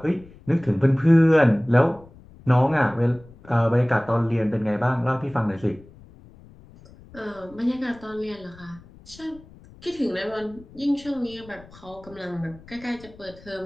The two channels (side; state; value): left; noise; rumble, 22 dB below the sound